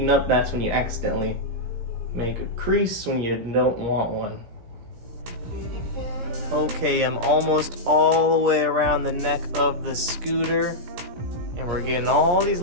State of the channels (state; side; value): late; left; 17 ms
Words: up, that's when you accidentally make a crease when you don't want one. Okay, I'm almost all the way around the neck of the scooter. And we're getting all these